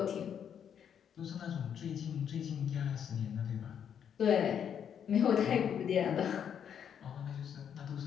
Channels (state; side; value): quieter; right; 8.4 dB